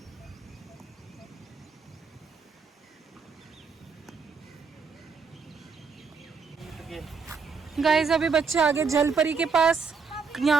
गाइस अभी बच्चे आगे जल परी के पास,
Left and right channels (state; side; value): quieter; left; 5.2 dB